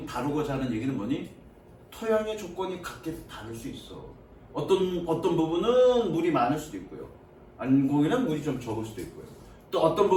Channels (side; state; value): both; identical; correlation 1.00